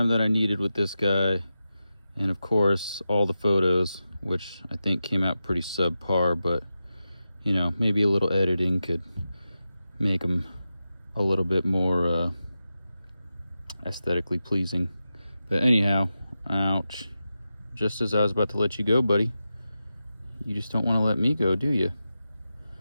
that I needed with this guy, and of course all the photos, which I think came out pretty subpar, but you know, maybe a little editing could make them a little bit more aesthetically pleasing. But anyhow, ouch. Just as I was about to let you go, buddy, you just don't want to let me go, do you?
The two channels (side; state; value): both; inverted; correlation -0.91